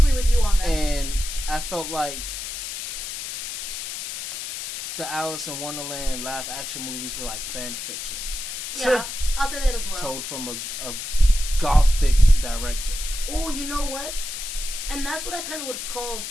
with you on that. And I felt like the Alice in Wonderland live action movies were like fan fictions. Yeah, I'll say that as well. Told from a gothic director. Oh, you know what? And that's what I kind of would call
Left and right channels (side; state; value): left; noise; hiss, 6 dB below the sound